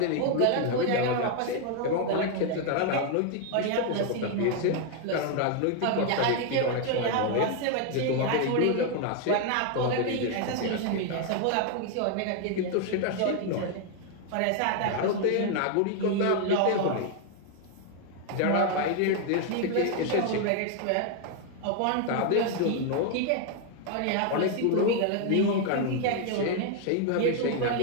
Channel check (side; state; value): both; different; correlation 0.00